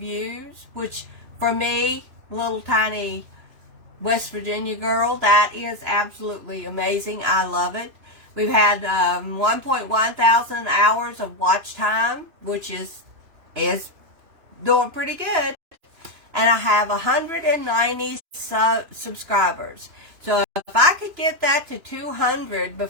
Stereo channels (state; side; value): late; left; 2.9 ms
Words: which for me, little tiny West Virginia girl, that is absolutely amazing. I love it. We've had 1.1 thousand hours of watch time, which is doing pretty good. And I have 190 subscribers. So if I could get that to 200